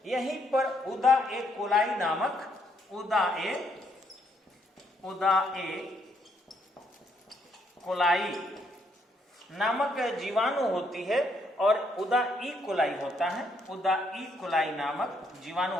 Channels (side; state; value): both; normal; correlation 0.73